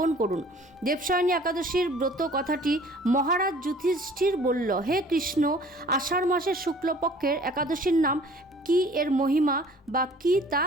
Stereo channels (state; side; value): normal; both; correlation 0.51